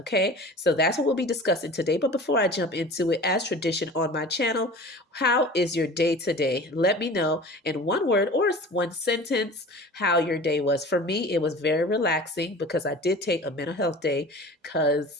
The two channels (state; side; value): normal; both; correlation 0.39